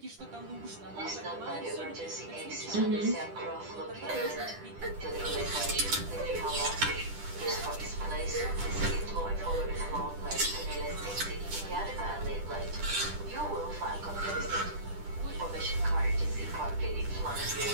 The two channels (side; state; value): left; late; 10 ms